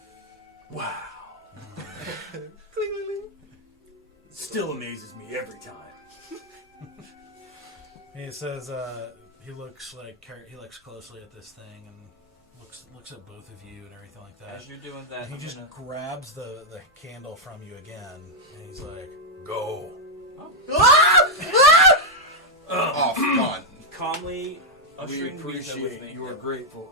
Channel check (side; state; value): both; normal; correlation -0.01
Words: Wow. Still amazes me every time. He says he looks closely at this thing and looks at both of you and everything like that. As you're doing that, And he I'm just gonna... grabs the candle from you again, and he's like, "Go." Oh, come on. calmly We ushering Beatha with appreciate me. your